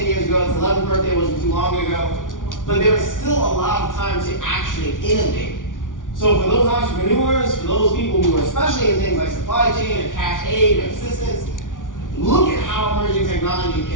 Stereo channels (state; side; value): late; right; 0.88 ms